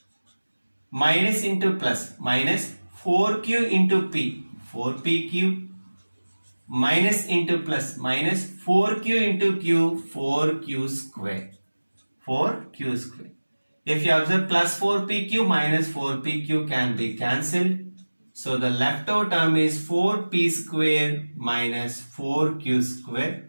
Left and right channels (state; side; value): inverted; both; correlation -1.00